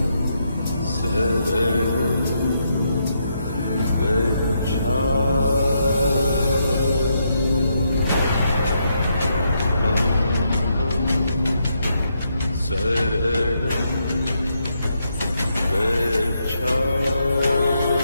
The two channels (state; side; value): inverted; both; correlation -0.79